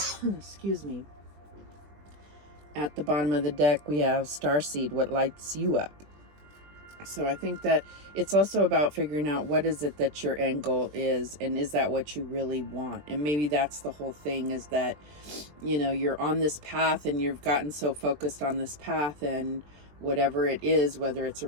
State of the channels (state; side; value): late; left; 20 ms